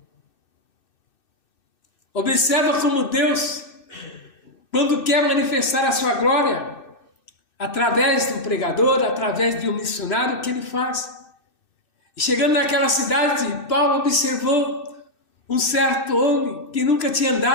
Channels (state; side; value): late; right; 2.6 ms